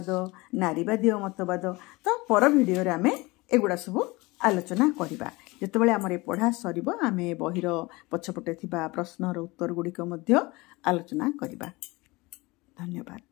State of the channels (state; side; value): quieter; right; 23.0 dB